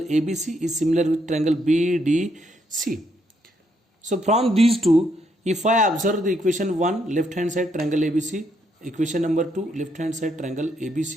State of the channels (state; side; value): normal; both; correlation 0.75